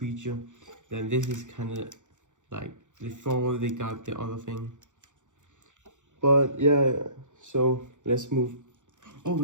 Then this is kind of like before they got the other thing. But yeah, so let's move. Oh,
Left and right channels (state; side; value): late; left; 0.85 ms